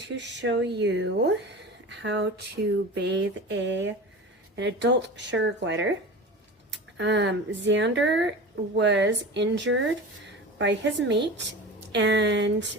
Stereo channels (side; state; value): both; normal; correlation 0.32